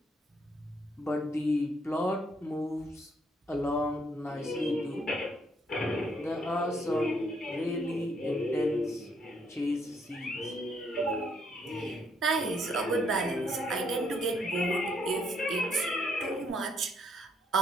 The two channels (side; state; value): both; normal; correlation 0.71